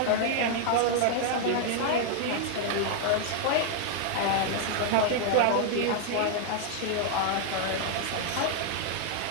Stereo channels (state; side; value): different; both; correlation 0.00